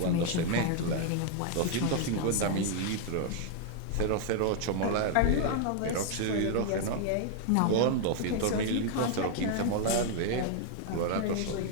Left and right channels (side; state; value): both; different; correlation 0.00